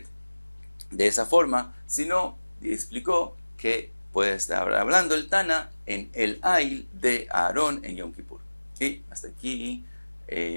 de esa forma, sino explicó que puede estar hablando el Tana en el Ail de Aarón en Yom Kippur. Y hasta aquí,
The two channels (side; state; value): both; inverted; correlation -1.00